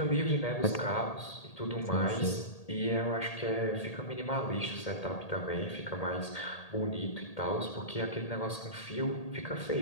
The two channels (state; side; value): late; right; 1.8 ms